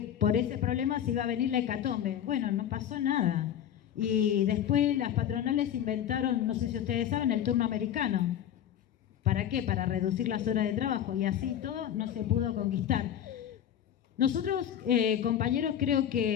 por ese problema se iba a venir la hecatombe. Bueno, no pasó nada. Y después las patronales inventaron, no sé si ustedes saben, el turno americano. ¿Para qué? Para reducir las horas de trabajo. Y así todo no se pudo conquistar. Nosotros, compañeros, creo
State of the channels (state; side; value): quieter; right; 10.1 dB